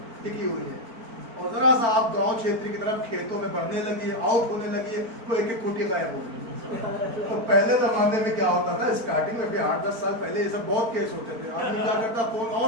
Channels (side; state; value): left; late; 4.4 ms